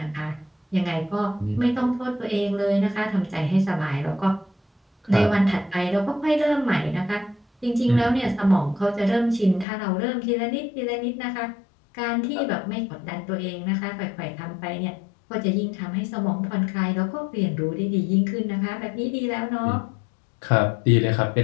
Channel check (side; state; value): right; drops out; at 9.7 s